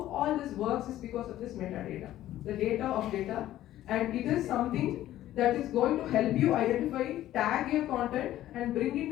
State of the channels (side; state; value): right; quieter; 13.6 dB